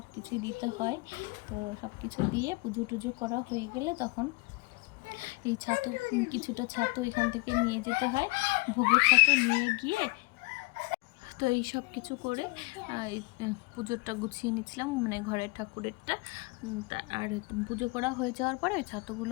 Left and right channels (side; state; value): right; quieter; 26.1 dB